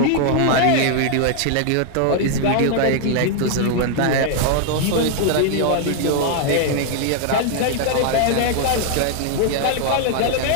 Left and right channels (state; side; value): different; both; correlation 0.00